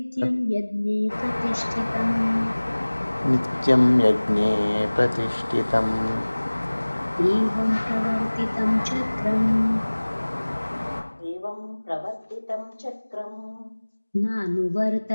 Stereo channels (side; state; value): both; inverted; correlation -1.00